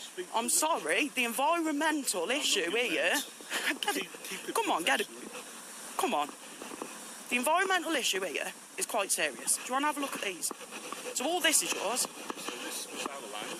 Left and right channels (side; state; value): both; identical; correlation 1.00